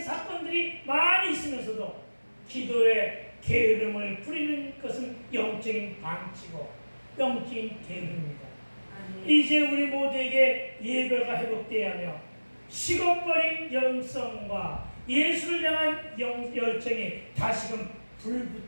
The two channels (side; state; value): both; inverted; correlation -1.00